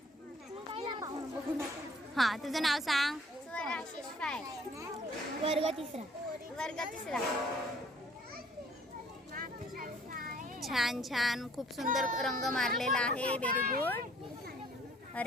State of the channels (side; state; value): both; normal; correlation 0.56